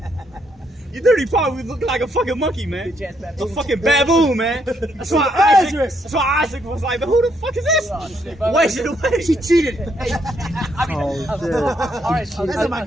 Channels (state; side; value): normal; both; correlation 0.74